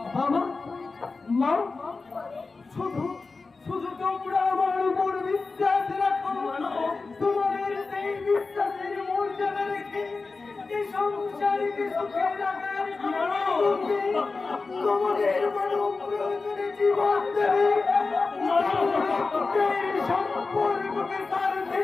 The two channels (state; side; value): quieter; right; 4.0 dB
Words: সুখে রাখার তোমাদের মানব প্রয়োজনে জীবন দেবে সম্পর্ককে